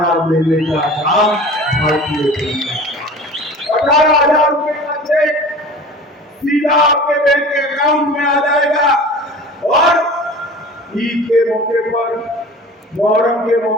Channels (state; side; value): normal; both; correlation 0.40